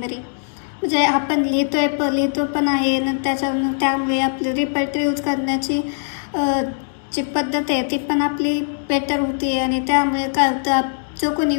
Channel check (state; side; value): silent; right; digital silence